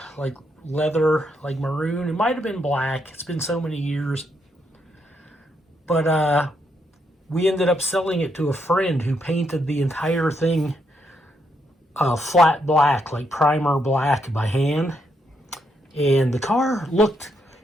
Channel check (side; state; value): both; normal; correlation 0.77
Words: like leather, like maroon. It might have been black. It's been so many years. But we ended up selling it to a friend who painted the entire thing flat black, like primer black by hand. And the car looked,